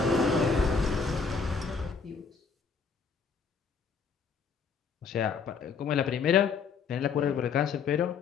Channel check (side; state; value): right; quieter; 5.6 dB